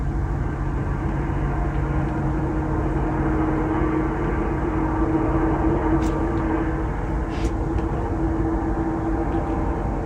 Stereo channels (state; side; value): identical; both; correlation 1.00